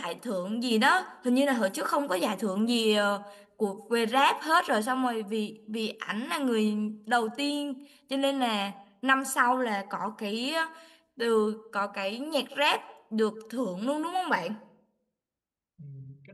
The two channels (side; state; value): both; identical; correlation 1.00